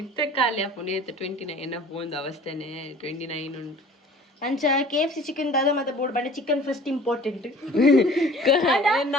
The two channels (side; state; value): both; normal; correlation 0.48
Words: ಖಾಲಿ ಆಪುಂಡು 29 ಬೋಂದು ಅವಸ್ಥೆನೆ 29 ಉಂಟು ಅಂಚ KFC ಚಿಕನ್ ದಾದ ಮತ್ತೆ ಬೋರ್ಡ್ ಬಂಡೆ ಚಿಕನ್ ಫಸ್ಟ್ ಇಂಪಾರ್ಟೆಂಟ್